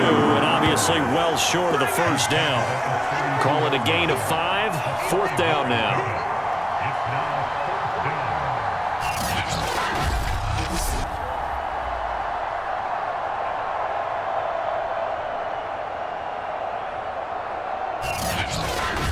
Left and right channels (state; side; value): identical; both; correlation 1.00